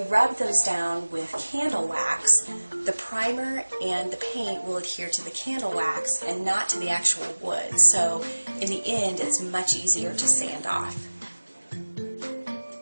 rub those down with candle wax, the primer and the paint will adhere to the candle wax and not to the actual wood. So in the end, it's much easier to sand off.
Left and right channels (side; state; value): both; inverted; correlation -1.00